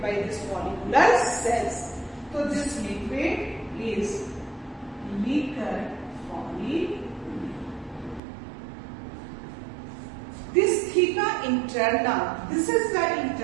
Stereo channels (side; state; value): left; drops out; at 8.2 s